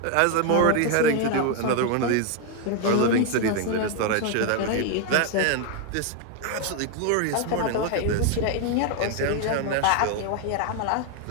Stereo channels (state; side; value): different; both; correlation 0.01